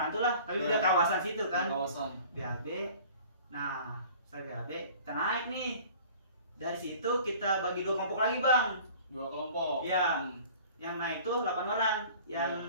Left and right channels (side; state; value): both; inverted; correlation -0.47